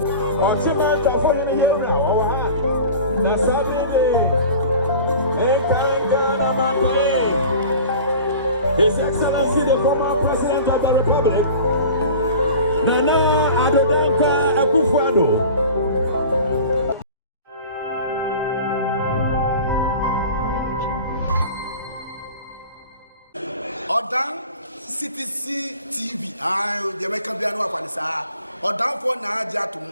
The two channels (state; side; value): inverted; both; correlation -0.40